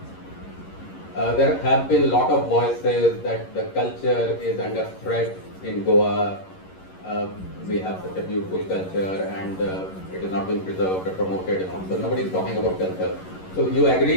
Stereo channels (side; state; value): right; late; 11 ms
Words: There have been a lot of voices that the culture is under threat in Goa. We have such a beautiful culture and it is not being preserved or promoted. So nobody is talking about culture. So you